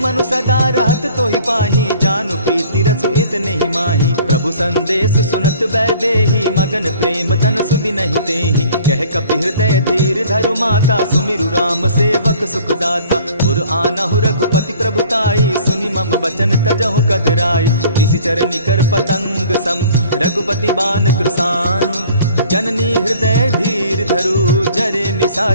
सदा रहत तोहि पाही जान प्रीति रसु इतने ही माही। प्रभु संदेश सुनत बैदेही मगन प्रेम तन सुधि नहीं तेहि। कह कपि हृदय धीर धरु माता सुमिरु राम सेवक सुखदाता। उर आनहु रघुपति प्रभुताई सुनि मम बचन तजहु कदराई। निशिचर निकर पतंग सम रघुपति बान कृसानु। जननी हृदय धीर धरु जरे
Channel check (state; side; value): inverted; both; correlation -0.51